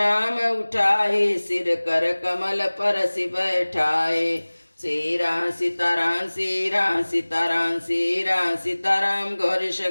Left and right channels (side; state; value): both; inverted; correlation -1.00